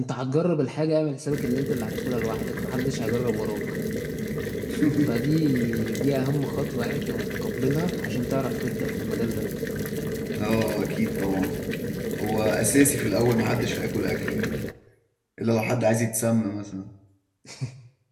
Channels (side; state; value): both; identical; correlation 1.00